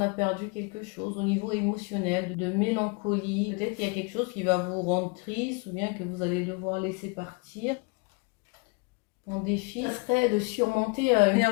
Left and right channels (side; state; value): right; quieter; 30.2 dB